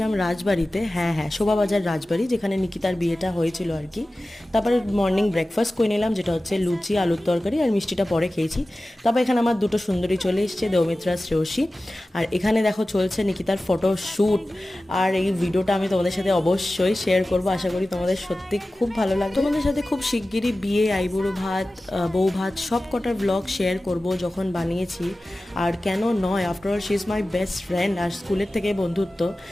রাজবাড়িতে, হ্যাঁ শোভাবাজার রাজবাড়ি, যেখানে নিকিতার বিয়েটা হয়েছিল আর কি। তারপরে মর্নিং ব্রেকফাস্ট করে নিলাম, যেটা হচ্ছে লুচি, আলুর তরকারি, আর মিষ্টিটা পরে খেয়েছি। তারপর এখানে আমার দুটো সুন্দরী চলে এসছে, দেওমিত্রা, শ্রেয়সী। আর এখানে দেখো চলছে নিকিতার ফটো শ্যুট। আর এই ভিডিওটা আমি তোমাদের সাথে অবশ্যই শেয়ার করবো, আশা করি তোমাদের সত্যি খুব ভালো লাগবে। তোমাদের সাথে খুব শিগগিরই বিয়ে, আইবুড়ো ভাত, বউ ভাত সব কটার ব্লগ শেয়ার করব যখন বানিয়েছি। আর কেন নয়, after all she is my best friend, আর স্কুলের থেকে বন্ধুত্ব।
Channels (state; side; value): normal; both; correlation 0.96